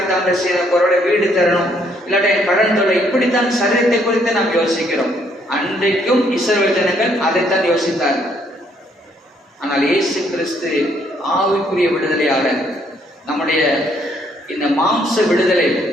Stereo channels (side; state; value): both; normal; correlation 0.68